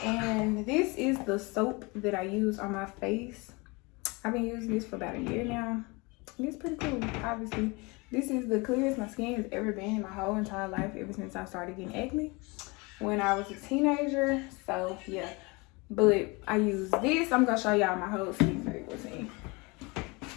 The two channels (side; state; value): right; quieter; 26.7 dB